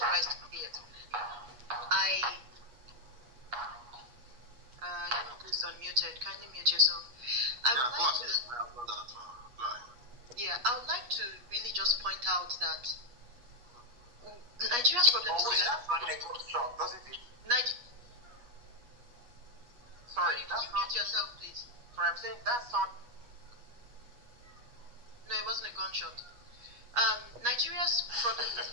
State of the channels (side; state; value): left; late; 8.4 ms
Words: to see it. Please unmuted. Kindly mute yourself. I would like to really just point out that Nigeria's problem is doesn't it? Sorry, can you mute yourself, please? Sorry, I'm saying that's not. No, it wasn't a gunshot. Nigeria's problem is